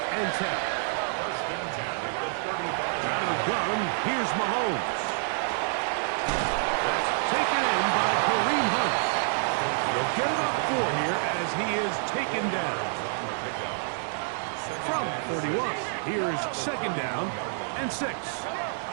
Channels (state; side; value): silent; left; digital silence